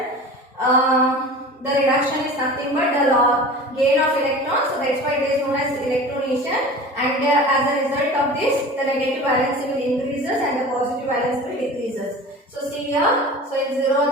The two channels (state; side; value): normal; both; correlation 0.37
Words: The reduction is nothing but the gain of electrons, so that's why it is known as electronation. And as a result of this, the negative valence will increases and the positive valence will decreases. So see here, so in 0